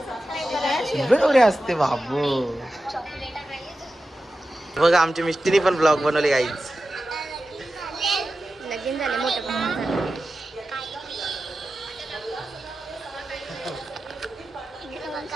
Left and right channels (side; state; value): both; normal; correlation 0.93